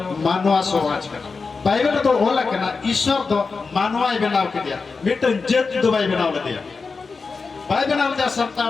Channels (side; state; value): right; quieter; 4.5 dB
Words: मानव समाज का बाइबल तो ओला कना ईश्वर तो मानवाई बनाव के दिया मिटन जत दुबाई बनाव दिया बाई बनाव जा